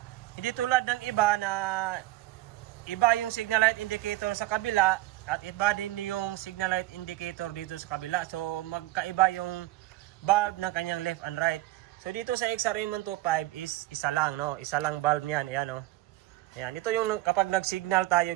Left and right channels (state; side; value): quieter; left; 17.5 dB